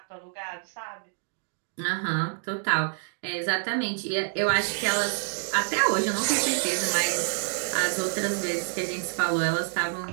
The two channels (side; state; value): left; silent; digital silence